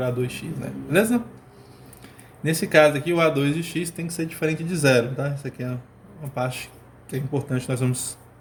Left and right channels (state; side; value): identical; both; correlation 1.00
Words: A2x, né? Beleza? Nesse caso aqui, o A2 de x tem que ser diferente de zero, tá? Isso aqui é uma parte que é importante, nós vamos